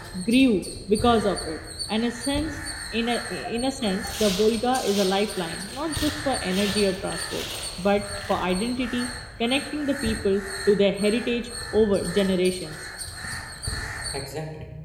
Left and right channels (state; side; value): identical; both; correlation 1.00